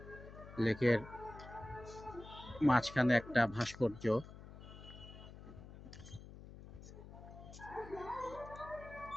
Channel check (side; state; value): left; noise; hum, 15 dB below the sound